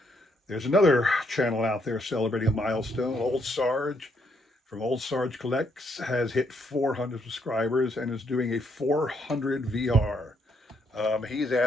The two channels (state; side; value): normal; both; correlation 0.73